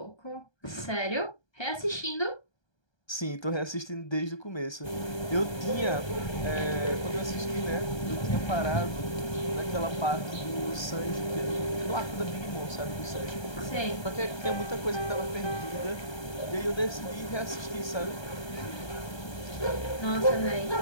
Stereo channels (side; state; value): right; late; 1.3 ms